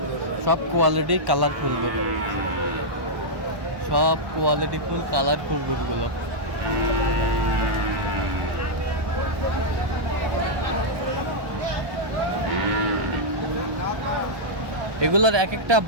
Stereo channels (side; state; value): left; late; 1.1 ms